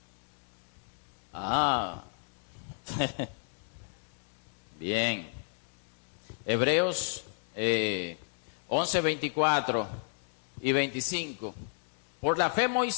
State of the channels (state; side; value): silent; right; 56 dB below the other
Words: Ah. Bien. Hebreos 11, 24 y 25. Por la fe